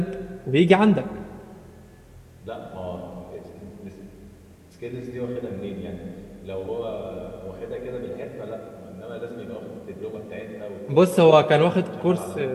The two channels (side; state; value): both; identical; correlation 1.00